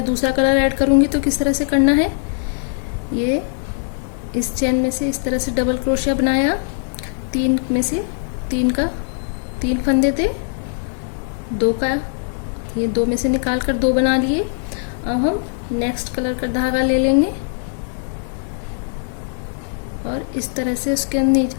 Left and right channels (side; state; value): right; silent; digital silence